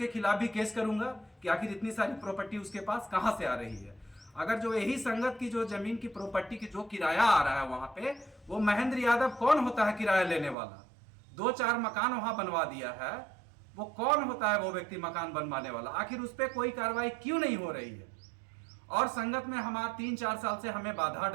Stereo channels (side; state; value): left; drops out; at 10.6 s